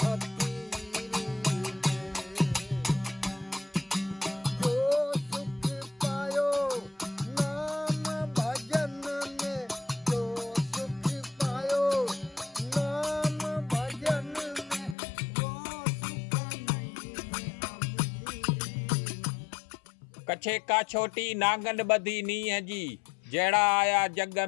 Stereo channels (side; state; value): right; drops out; at 15.0 s